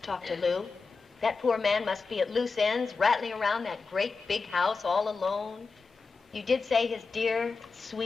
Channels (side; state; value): right; quieter; 4.5 dB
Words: talk to Lou. That poor man must be at loose ends, rattling around that great big house all alone. You did say his dear,